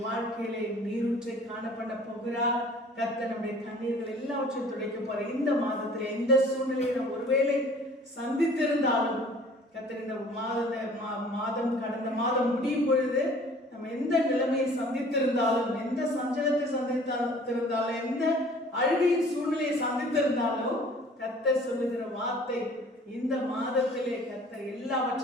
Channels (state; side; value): normal; both; correlation 0.51